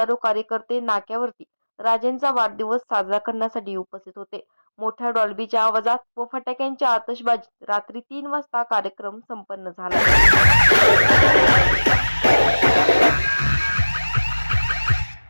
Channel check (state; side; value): inverted; both; correlation -1.00